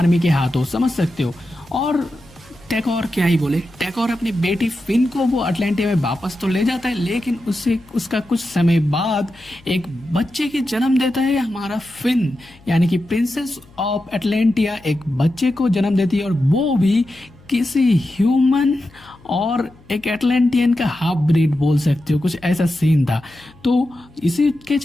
के हाथों, समझ सकते हो। और थेकोर क्या ही बोले, थेकोर अपनी बेटी फिन को वो अटलांटिया में वापस तो ले जाता है, लेकिन उसका कुछ समय बाद एक बच्चे की जन्म देता है हमारा फिन, यानी कि प्रिंसेस ऑफ एटलांटिया एक बच्चे को जन्म देती है, और वो भी किसी ह्यूमन और एक एटलांटियन का हाफ ब्रीड बोल सकते हो, कुछ ऐसा सीन था। तो इसी के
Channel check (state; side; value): noise; left; hum, 26 dB below the sound